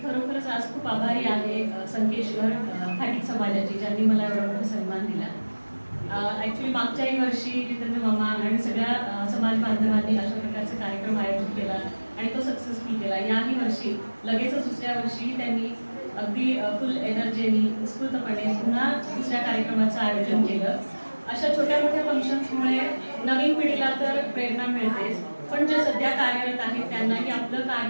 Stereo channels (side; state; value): both; inverted; correlation -1.00